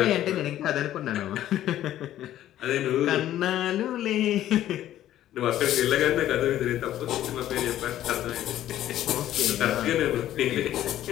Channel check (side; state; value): right; quieter; 12.7 dB